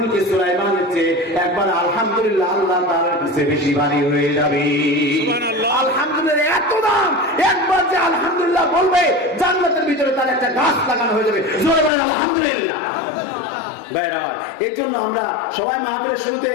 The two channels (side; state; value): right; drops out; at 11.9 s